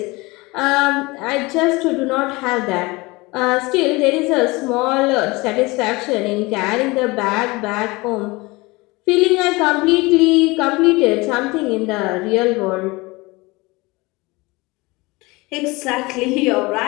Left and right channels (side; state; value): right; quieter; 23.5 dB